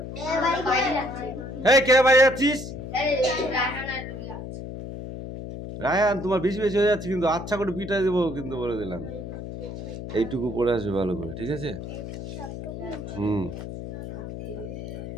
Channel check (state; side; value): noise; left; hum, 8 dB below the sound